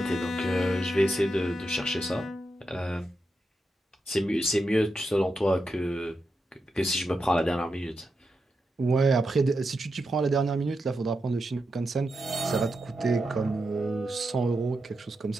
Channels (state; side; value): normal; both; correlation 0.87